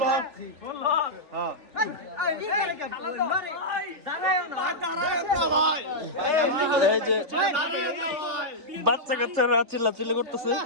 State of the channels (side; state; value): left; late; 3.4 ms